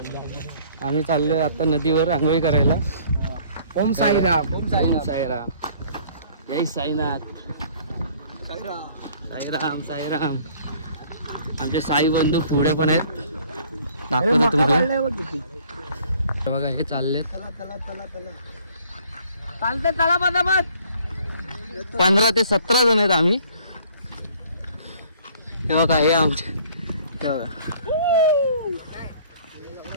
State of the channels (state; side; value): inverted; both; correlation -0.56